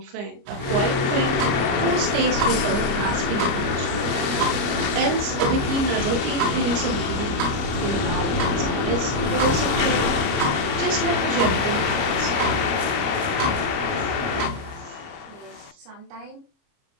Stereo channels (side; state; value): left; late; 29 ms